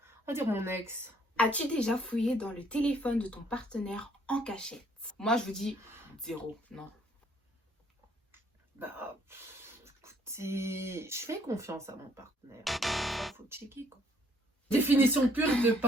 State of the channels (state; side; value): normal; both; correlation 0.65